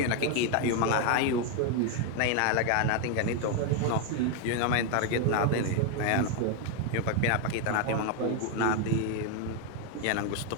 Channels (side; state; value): both; different; correlation 0.01